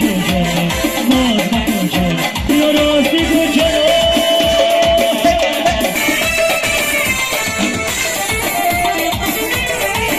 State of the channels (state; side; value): identical; both; correlation 1.00